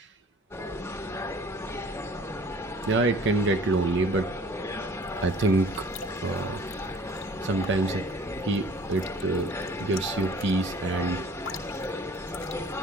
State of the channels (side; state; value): both; normal; correlation 0.50